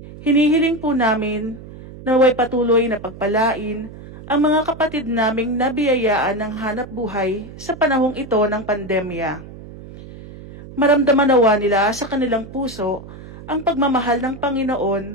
Hinihiling po namin na naway patuloy na pagpalain ang mga kapatid naming nabiyayaan ng hanap buhay sa panahong ito ng pandemya. Maramdaman nawa nila sa kanilang puso ang pagmamahal ng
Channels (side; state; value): right; noise; hum, 15 dB below the sound